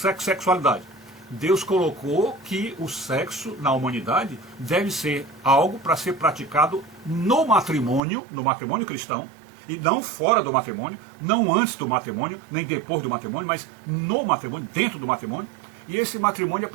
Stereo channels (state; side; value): drops out; left; at 8.0 s